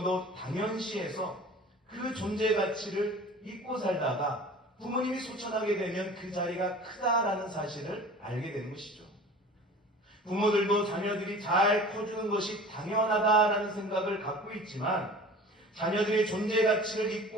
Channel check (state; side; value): normal; both; correlation 0.42